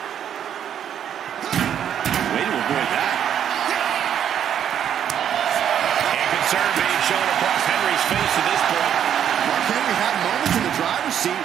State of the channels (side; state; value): left; quieter; 9.3 dB